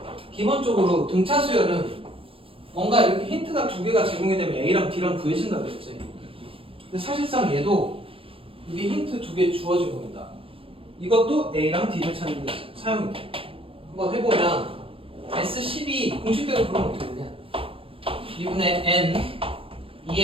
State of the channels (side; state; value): left; late; 0.27 ms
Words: 기본적으로 등차 수열은 뭔가 이렇게 힌트가 두 개가 제공이 되면 A랑 B랑 구해진다 그랬지. 근데 사실상 얘도 이게 힌트 두 개 주어진 겁니다. 이것도 A랑 D를 찾는 데 사용이 돼. 한번 해보면 S12 공식대로 그러면 어떻게 되냐? 2분의 N